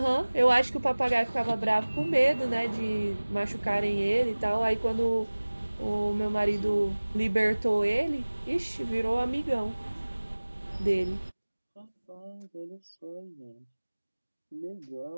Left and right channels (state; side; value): inverted; both; correlation -1.00